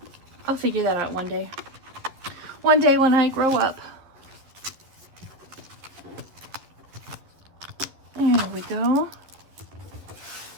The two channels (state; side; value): late; left; 12 ms